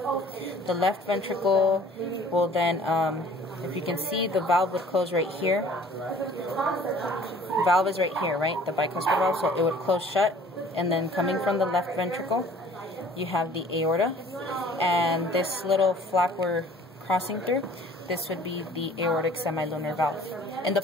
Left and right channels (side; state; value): both; normal; correlation 0.52